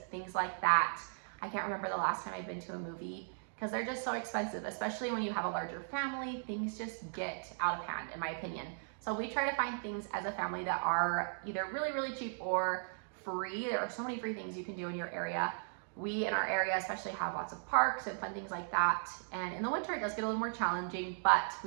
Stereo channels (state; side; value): silent; left; digital silence